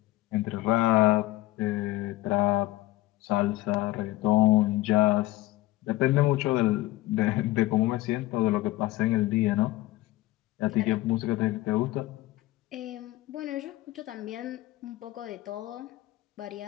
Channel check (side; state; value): right; quieter; 17.4 dB